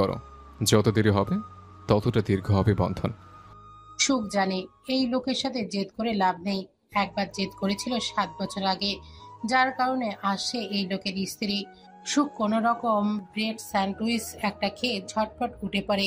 যত দেরি হবে ততটা দীর্ঘ হবে বন্ধন। সুখ জানে এই লোকের সাথে জেদ করে লাভ নেই। একবার জেদ করেছিল 7 বছর আগে, যার কারণে আজ সে এই লোকের স্ত্রী। সুখ কোনো রকম ব্রেড স্যান্ডউইচ একটা খেয়ে ঝটপট উঠে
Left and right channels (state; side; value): identical; both; correlation 1.00